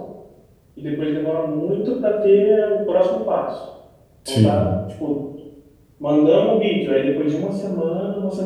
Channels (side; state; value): both; identical; correlation 1.00